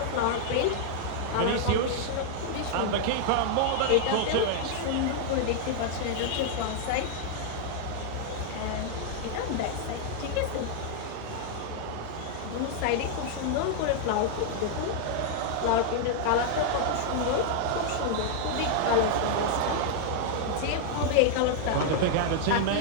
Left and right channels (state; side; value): different; both; correlation -0.01